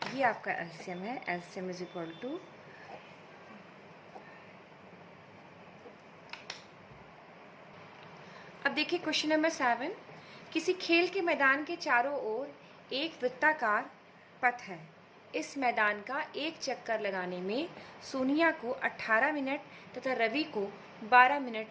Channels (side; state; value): both; identical; correlation 1.00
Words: ये आपका एलसीएम है। एलसीएम इज इक्वल टू अब देखिए क्वेश्चन नंबर 7। किसी खेल के मैदान के चारों ओर एक वृत्ताकार पथ है। इस मैदान का एक चक्कर लगाने में सोनिया को 18 मिनट तथा रवि को 12